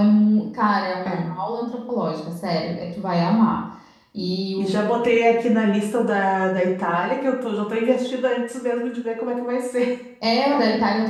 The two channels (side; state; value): both; identical; correlation 1.00